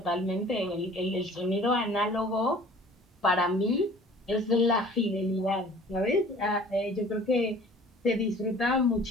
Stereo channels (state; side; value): normal; both; correlation 0.49